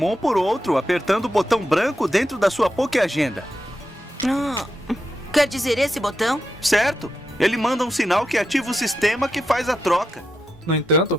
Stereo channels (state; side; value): normal; both; correlation 0.86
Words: por outro apertando o botão branco dentro da sua Pokéagenda. Quer dizer esse botão? Certo! Ele manda um sinal que ativa o sistema que faz a troca. No